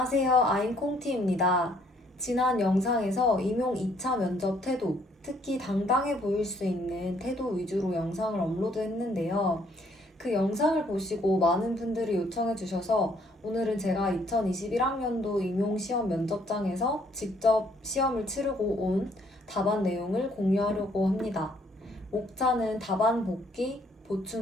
아임 콩티입니다. 지난 영상에서 임용 2차 면접 태도, 특히 당당해 보일 수 있는 태도 위주로 영상을 업로드했는데요. 그 영상을 보시고 많은 분들이 요청해 주셔서 오늘은 제가 2021학년도 임용 시험 면접장에서 직접 시험을 치르고 온 답안 내용을 공유하려고 합니다. 목차는 답안 복기,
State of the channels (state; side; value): normal; both; correlation 0.66